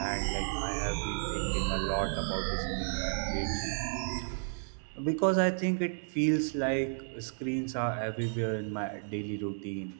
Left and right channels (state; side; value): silent; left; digital silence